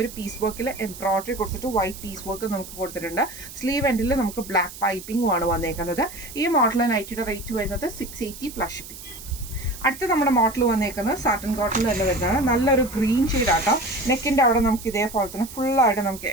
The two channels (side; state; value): right; noise; hiss, 14 dB below the sound